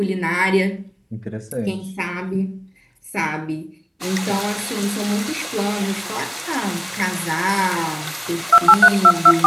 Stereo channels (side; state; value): both; identical; correlation 1.00